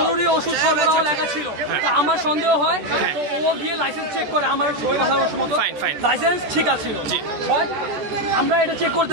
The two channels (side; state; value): left; late; 13 ms